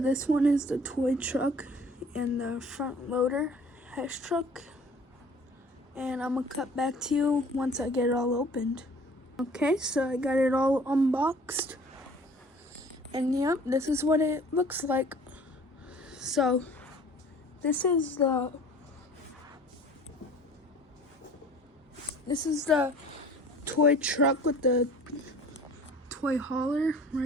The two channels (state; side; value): normal; both; correlation 0.49